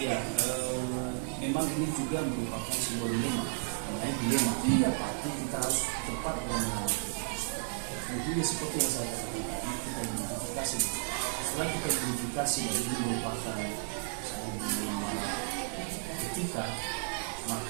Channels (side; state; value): left; silent; digital silence